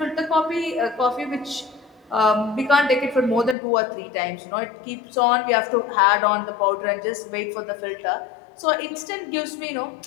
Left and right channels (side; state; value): right; drops out; at 3.6 s